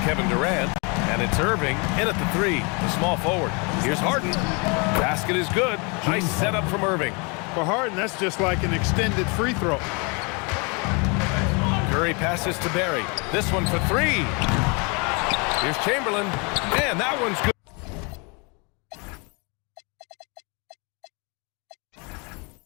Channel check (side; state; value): right; quieter; 31.9 dB